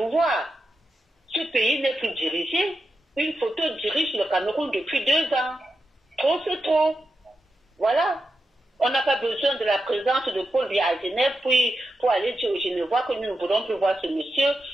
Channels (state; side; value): normal; both; correlation 0.88